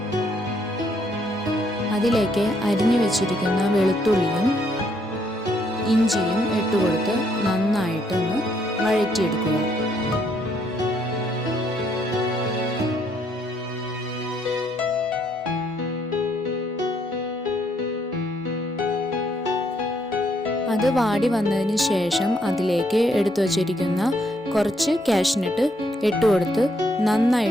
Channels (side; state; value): both; normal; correlation 0.72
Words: അതിലേക്ക് അരിഞ്ഞു വെച്ചിരിക്കുന്ന വെളുത്തുള്ളിയും ഇഞ്ചിയും ഇട്ടുകൊടുത്ത് നന്നായിട്ടൊന്ന് വഴറ്റിയെടുക്കുക. അത് വാടി വന്നതിന് ശേഷം അതിലേക്ക് എടുത്തു വച്ചിരിക്കുന്ന കുറച്ച് കാഷ്യൂനട്ട് ഇട്ടുകൊടുത്ത്